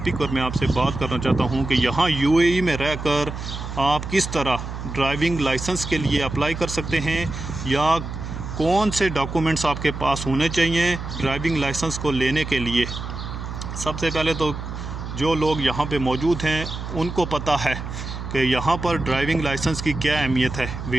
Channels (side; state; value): right; noise; hum, 7 dB below the sound